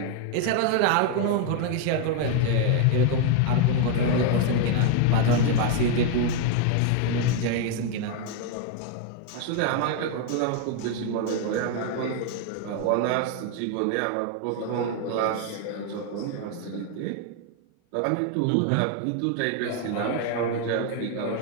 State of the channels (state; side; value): different; both; correlation 0.01